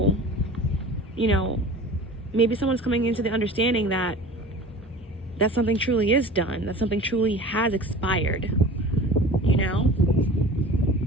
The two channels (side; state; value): both; normal; correlation 0.39